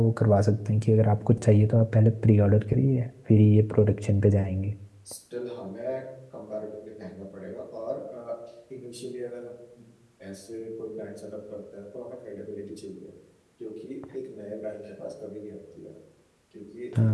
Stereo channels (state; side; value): identical; both; correlation 1.00